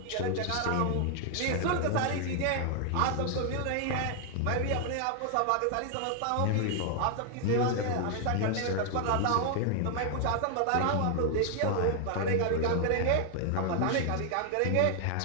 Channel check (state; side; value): different; both; correlation 0.00